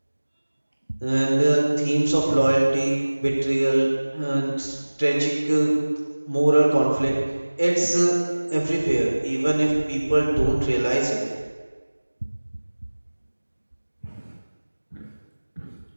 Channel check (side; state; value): both; inverted; correlation -1.00